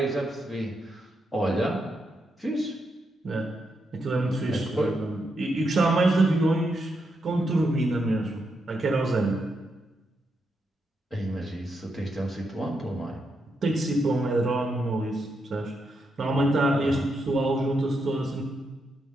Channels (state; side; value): normal; both; correlation 0.82